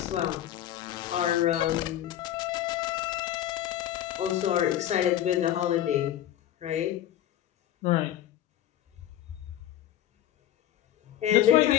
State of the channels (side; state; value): right; quieter; 12.0 dB